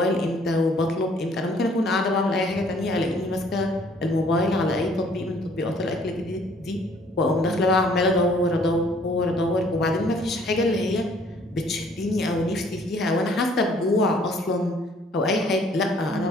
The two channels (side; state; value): both; normal; correlation 0.60